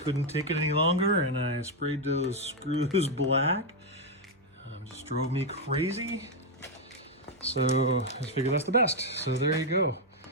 take it any longer, and I sprayed those screws black. Just drove me crazy. So I just figured that's the best. So there you go.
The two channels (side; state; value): both; normal; correlation 0.01